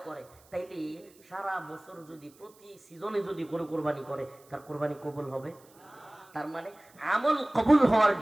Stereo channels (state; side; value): noise; right; hiss, 28 dB below the sound